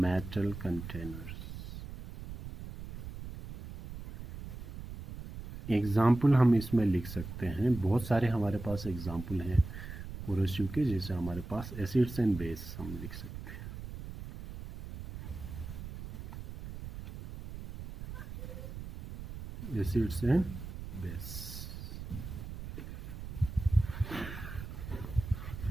containers. Example हम इसमें लिख सकते हैं, बहुत सारे हमारे पास एग्जाम्पल हैं कोरोसिव के, जैसे हमारे पास एसिड्स एंड बेस हम लिख सकते हैं, एसिड्स एंड बेस।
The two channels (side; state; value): right; noise; rumble, 10 dB below the sound